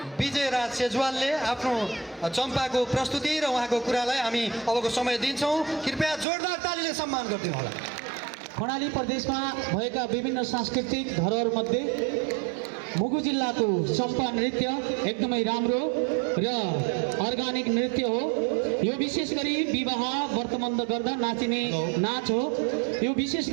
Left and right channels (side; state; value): left; drops out; at 6.2 s